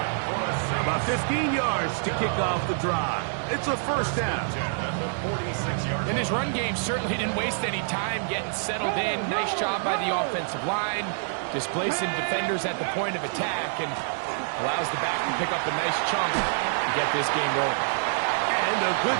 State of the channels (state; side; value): silent; left; digital silence